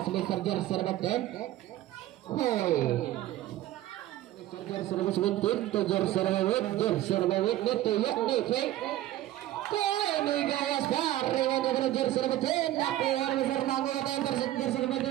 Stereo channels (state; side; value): quieter; left; 14.5 dB